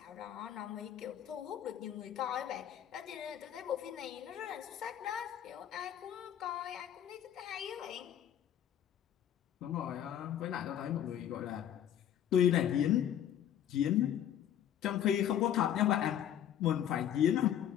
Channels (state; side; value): quieter; right; 10.4 dB